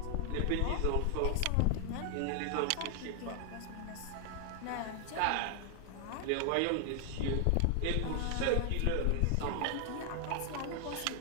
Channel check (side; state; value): both; different; correlation 0.00